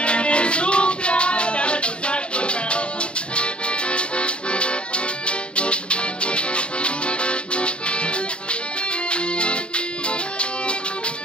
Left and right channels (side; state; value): right; late; 0.055 ms